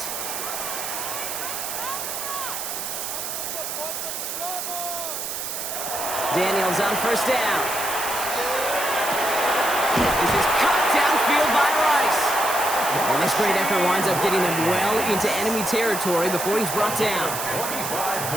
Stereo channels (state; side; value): noise; right; hiss, 5 dB below the sound